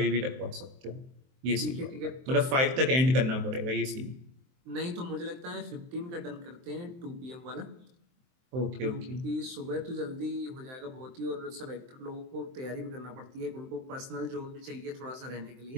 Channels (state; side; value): late; left; 23 ms